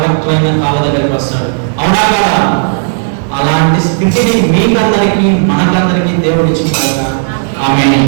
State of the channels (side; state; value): left; silent; digital silence